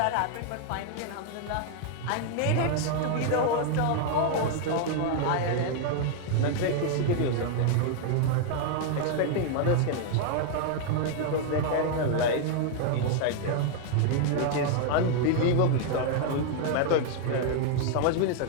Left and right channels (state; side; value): different; both; correlation 0.00